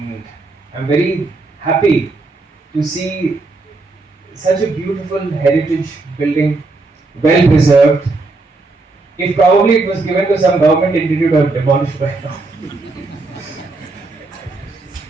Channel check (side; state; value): left; quieter; 3.4 dB